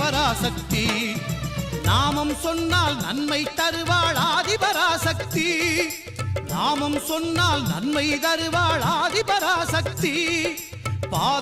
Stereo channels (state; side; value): identical; both; correlation 1.00